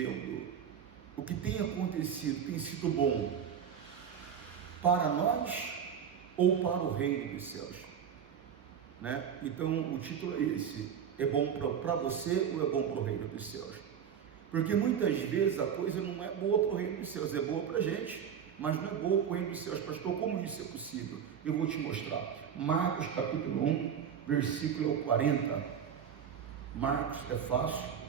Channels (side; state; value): left; quieter; 8.1 dB